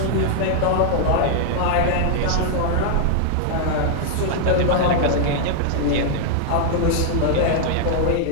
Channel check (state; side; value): different; both; correlation -0.01